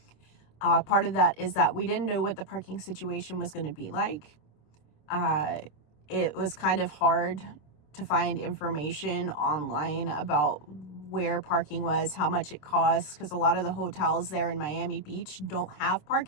Part of that is that we didn't know what the parking situation was going to be like. It was kind of hard to find information online about where parking was, how much it costs, because a lot of the hotels there in Miami Beach don't have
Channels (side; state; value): right; late; 27 ms